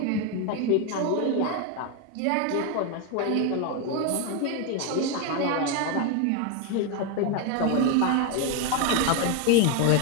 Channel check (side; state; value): both; different; correlation 0.01